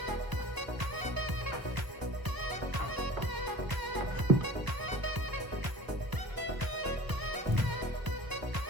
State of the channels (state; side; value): late; left; 1.0 ms